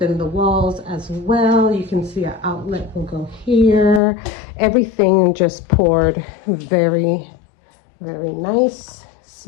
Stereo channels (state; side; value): drops out; right; at 4.0 s